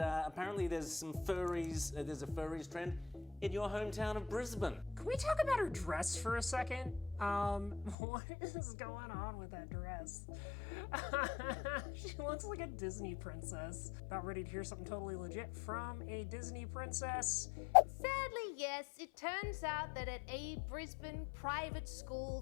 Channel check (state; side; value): drops out; right; at 8.0 s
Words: there's some furries, there's a furries trend in your hometown of Brisbane. Can we talk about her dress for a second? What is going on with that dress? She looks like a Disney princess. About ready to hear something totally legit from a Disney princess. Sadly, yes, it turns out that at a Brisbane private